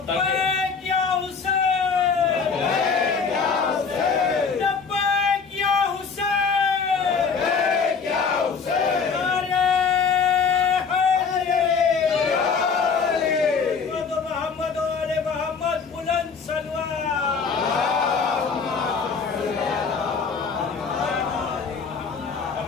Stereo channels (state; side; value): quieter; right; 5.5 dB